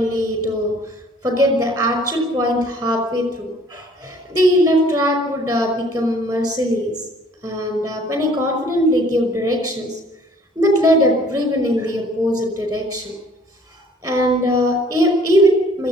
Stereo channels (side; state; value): both; normal; correlation 0.56